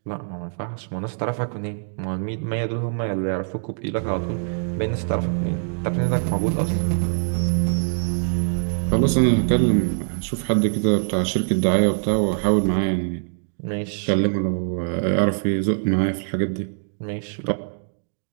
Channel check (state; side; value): silent; left; digital silence